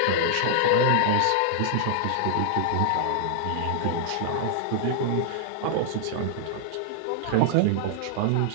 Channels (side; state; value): both; different; correlation -0.01